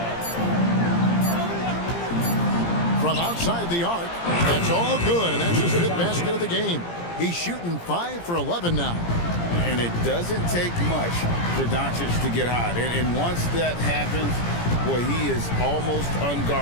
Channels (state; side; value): late; right; 17 ms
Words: From outside the arc, that's all good, and that's his 5th basket of the game. He's shooting 5 for 11 now. And it doesn't take much for Doncic to get hot. And once that happens, boy, he is almost